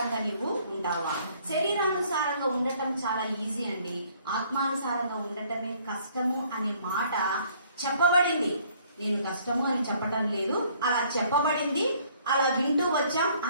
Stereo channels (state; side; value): inverted; both; correlation -0.61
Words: నీవు ఉంటావా? శరీరానుసారంగా ఉండటం చాలా ఈజీ అండి, ఆత్మానుసారంగా ఉండటమే కష్టము అనే మాట చెప్పబడింది. నేను కష్టము అని చెప్పటం లేదు, అలా చెప్పబడింది, అలా వింటూ వచ్చాం.